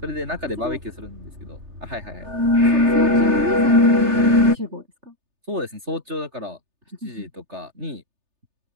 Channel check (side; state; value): left; late; 3.3 ms